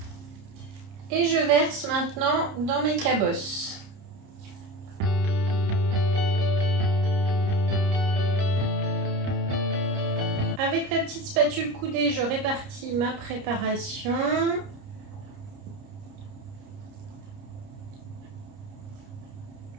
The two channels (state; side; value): late; left; 30 ms